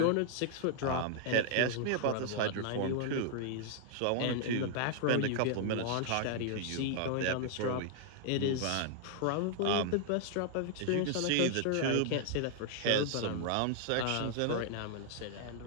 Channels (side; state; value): both; different; correlation -0.01